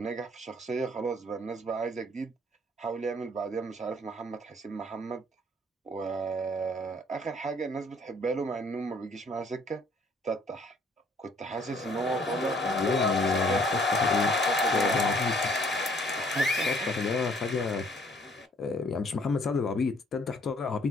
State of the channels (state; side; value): normal; both; correlation 0.61